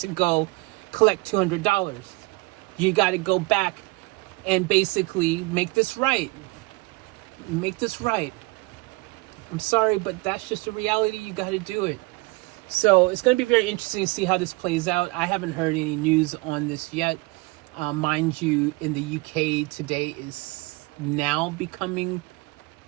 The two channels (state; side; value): quieter; left; 24.1 dB